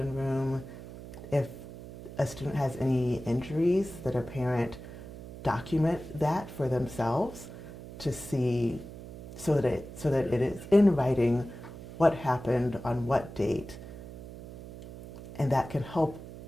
room, if a student has any injuries, that a parent document that for themselves to see, so that it is in writing what happened on what date, and that can help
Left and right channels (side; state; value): right; noise; hum, 13 dB below the sound